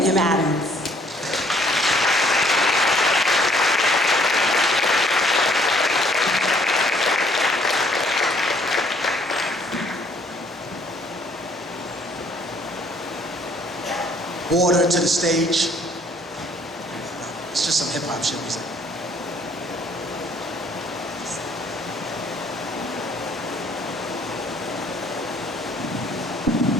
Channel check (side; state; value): both; normal; correlation 0.63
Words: M. Adams. Water to the stage. It's just some hip hop shit we say.